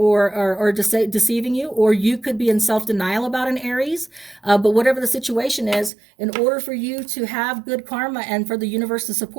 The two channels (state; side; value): drops out; left; at 5.9 s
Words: deceiving you, or you could be in self-denial about an Aries. But whatever the situation is, in order for you to have good karma and for the universe to